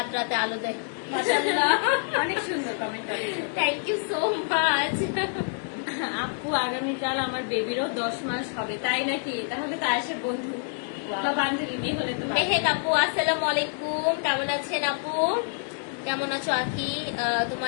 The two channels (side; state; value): right; silent; 60 dB below the other